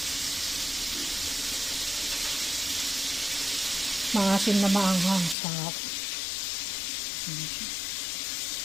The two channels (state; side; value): drops out; right; at 5.4 s